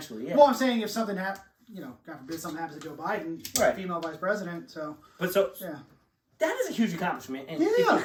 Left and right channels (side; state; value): both; identical; correlation 1.00